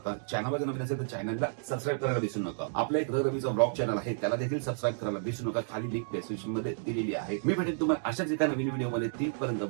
चॅनलवर जर नवीन असेल तर चॅनलला सबस्क्राईब करायला विसरू नका. आपला एक रवीचा ब्लॉग चॅनल आहे, त्याला देखील सबस्क्राईब करायला विसरू नका. खाली लिंक डिस्क्रिप्शन मध्ये दिलेली आहे. मी भेटेन तुम्हाला अशाच एका नवीन व्हिडिओ मध्ये. तीपर्यंत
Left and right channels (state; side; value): silent; left; digital silence